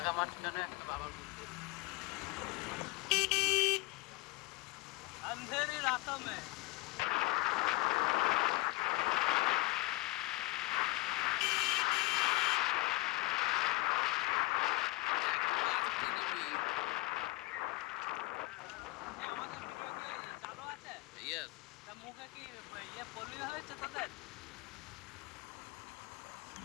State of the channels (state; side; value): quieter; right; 21.8 dB